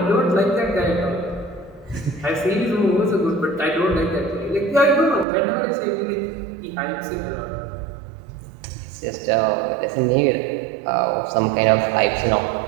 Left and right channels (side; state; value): left; drops out; at 5.2 s